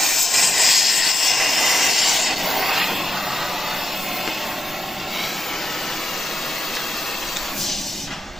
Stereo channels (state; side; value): normal; both; correlation 0.88